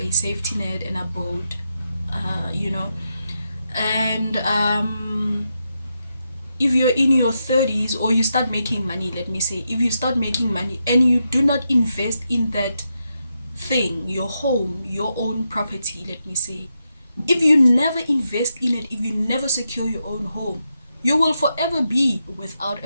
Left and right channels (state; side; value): inverted; both; correlation -0.84